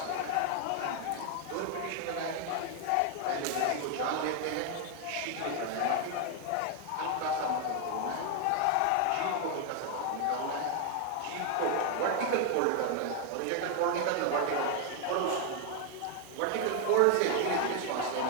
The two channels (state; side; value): different; both; correlation 0.00